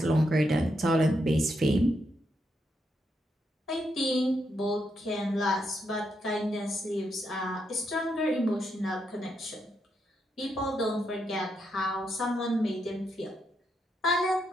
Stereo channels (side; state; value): both; normal; correlation 0.81